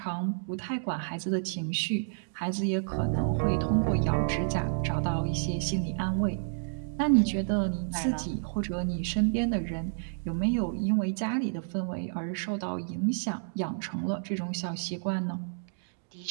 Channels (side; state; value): left; silent; digital silence